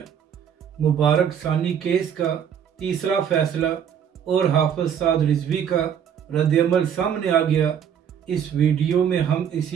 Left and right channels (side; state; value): left; quieter; 8.4 dB